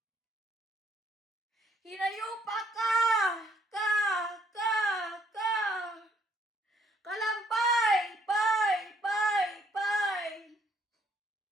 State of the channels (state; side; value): normal; both; correlation 0.66